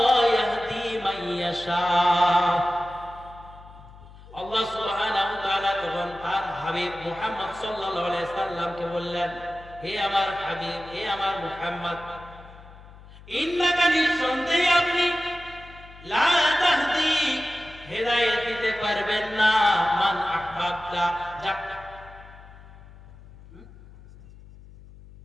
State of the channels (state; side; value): noise; left; hum, 20 dB below the sound